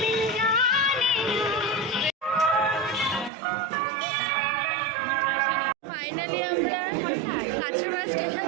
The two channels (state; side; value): drops out; left; at 3.3 s